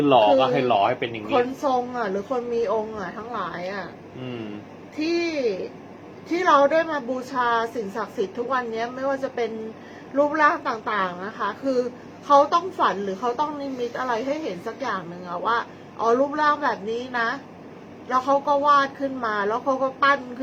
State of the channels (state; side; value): identical; both; correlation 1.00